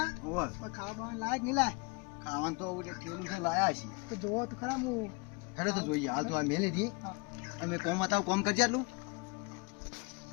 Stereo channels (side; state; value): right; quieter; 28.9 dB